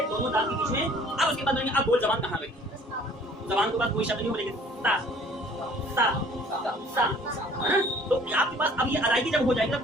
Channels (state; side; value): normal; both; correlation 0.54